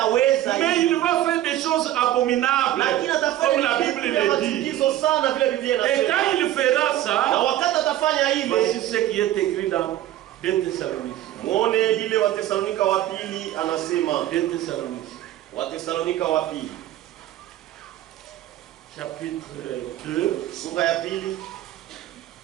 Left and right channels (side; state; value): left; quieter; 13.5 dB